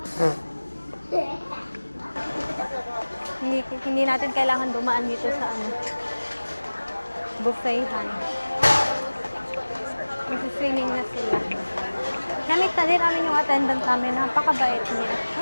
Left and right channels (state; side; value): inverted; both; correlation -1.00